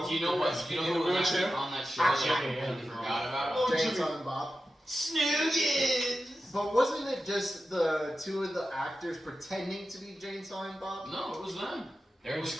Do you know what? Do you know who was actually on that show that I completely forgot about? Jay and Silent Bob. Snoogans! But wasn't it just the 2 of the actors pretending to be Jay and Silent Bob? No, it was them. They're It in was,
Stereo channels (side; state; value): both; normal; correlation 0.92